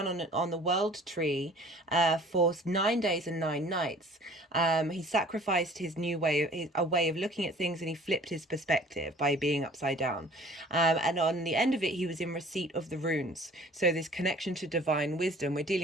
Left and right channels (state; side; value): normal; both; correlation 0.50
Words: on the world tree for 9 days and 9 nights. He sacrificed his a way of looking at things, and he flipped his perspective by being upside down. And on the end of it, he was in receipt of the runes. So this connection to divine wisdom. We're